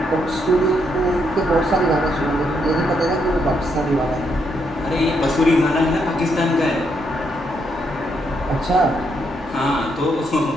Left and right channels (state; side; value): normal; both; correlation 0.77